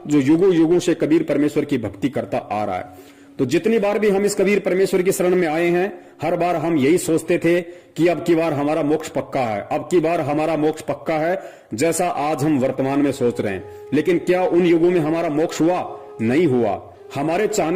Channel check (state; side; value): identical; both; correlation 1.00